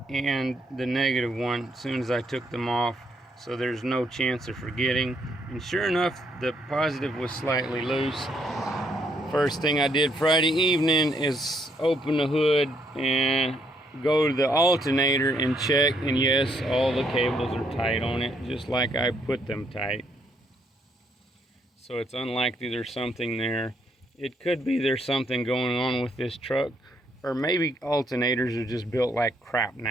and the negative one as soon as I took them off, so there's no chance of forgetting. And sure enough, the positive was slightly loose. First thing I did Friday evening is open the hood and go to the alternator and check, and yes, all the cables are tight on it, just like I put them tight. So it's unlikely there's something there. It could be there's something going on with this truck, or maybe alternators are just built like crap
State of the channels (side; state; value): both; normal; correlation 0.72